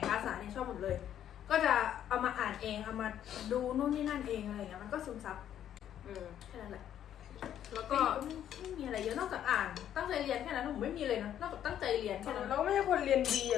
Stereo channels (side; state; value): right; quieter; 10.4 dB